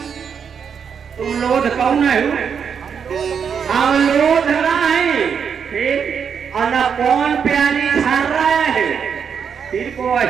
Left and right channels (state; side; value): quieter; left; 7.0 dB